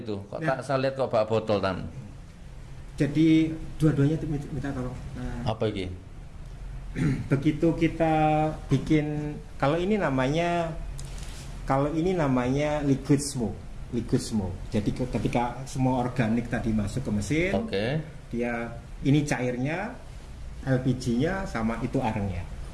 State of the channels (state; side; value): identical; both; correlation 1.00